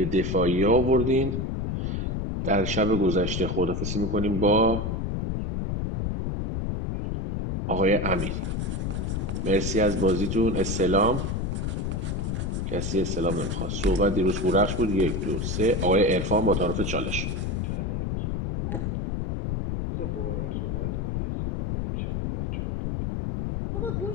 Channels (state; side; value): noise; left; rumble, 1 dB below the sound